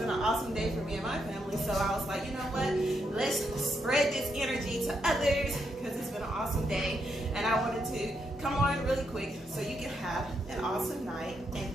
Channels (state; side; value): normal; both; correlation 0.79